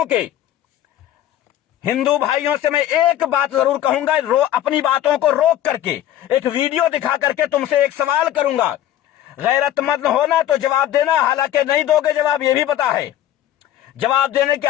के। हिंदू भाइयों से मैं एक बात जरूर कहूंगा, अपनी बातों को रोक करके एक वीडियो दिखा करके तुमसे एक सवाल करूंगा। गैरतमंद होना तो जवाब देना, हालांकि नहीं दोगे जवाब, यह भी पता है, जवाब देने की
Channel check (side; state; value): right; quieter; 12.2 dB